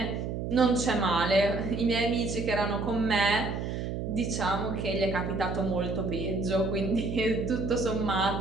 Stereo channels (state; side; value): noise; right; hum, 4 dB below the sound